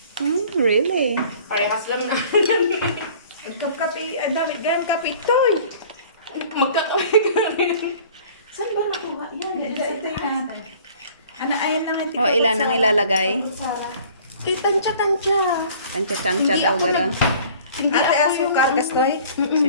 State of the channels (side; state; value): both; inverted; correlation -0.50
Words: Really? Parehas lang na. Kape, dami ganyan kape toy. Magkakape ka rin. Saan ba nakuha yan? Ito yung ano, ayan lang yung O, ilan ang ilalagay? Sarah. Tansya-tansya. Tansya-tansya Hindi daw ako gano'n. Hindi Ate, ako asukar, kastoy?